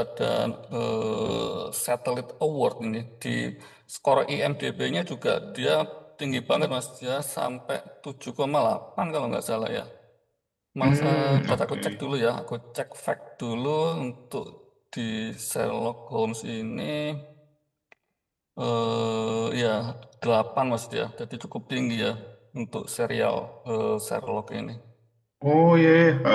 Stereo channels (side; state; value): both; identical; correlation 1.00